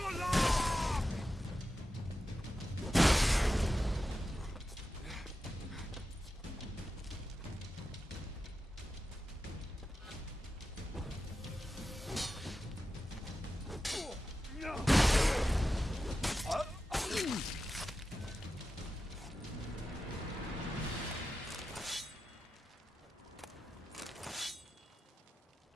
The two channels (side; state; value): both; normal; correlation 0.91